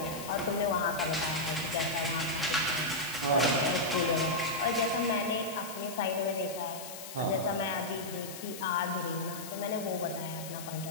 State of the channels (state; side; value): noise; left; hiss, 11 dB below the sound